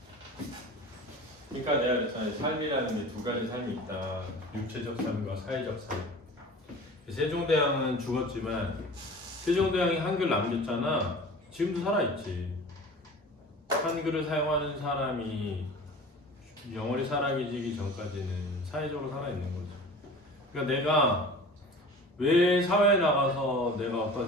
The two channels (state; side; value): normal; both; correlation 0.40